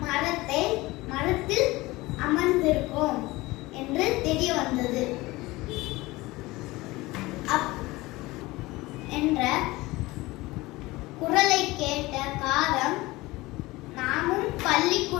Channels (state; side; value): quieter; right; 20.5 dB